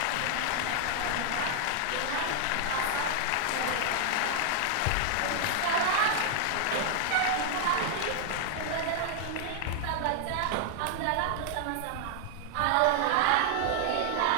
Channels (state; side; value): different; both; correlation 0.00